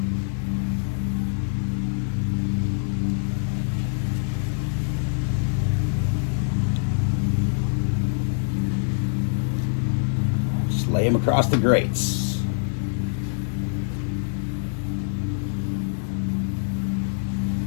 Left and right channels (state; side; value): silent; right; digital silence